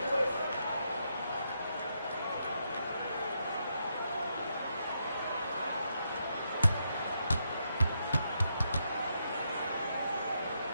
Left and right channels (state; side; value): inverted; both; correlation -0.80